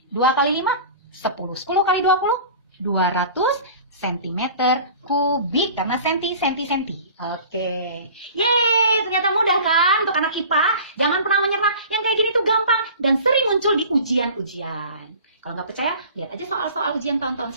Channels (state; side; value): inverted; both; correlation -0.41